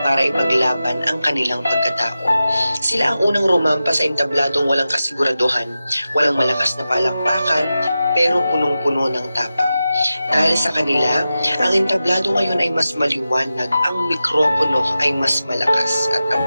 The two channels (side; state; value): both; inverted; correlation -0.92